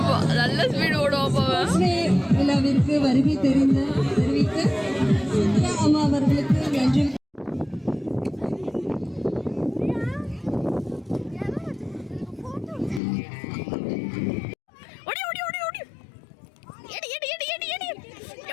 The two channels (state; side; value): drops out; right; at 13.0 s